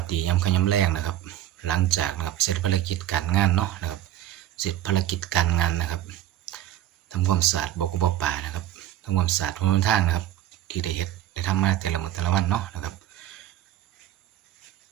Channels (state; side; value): quieter; left; 12.7 dB